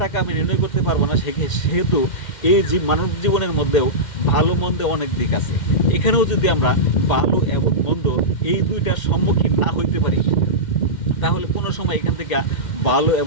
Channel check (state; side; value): late; right; 2.1 ms